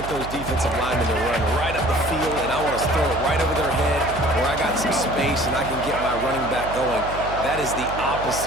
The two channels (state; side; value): noise; right; hum, 10 dB below the sound